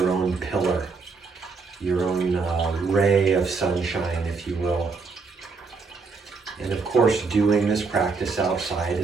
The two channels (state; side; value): quieter; left; 4.6 dB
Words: own pillar, your own ray of sunshine, if you will. And of course, doing this practice outside